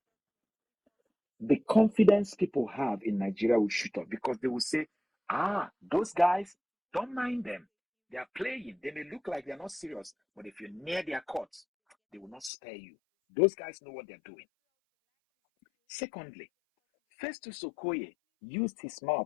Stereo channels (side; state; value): right; drops out; at 12.5 s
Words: the confidence people have in Nigeria will shoot up, because they will say, those guys, don't mind them. They are playing. They may look like they're not serious, but if you're near their courts, they will not spare you. Those guys know what they're doing. Secondly, Festus Okoye used his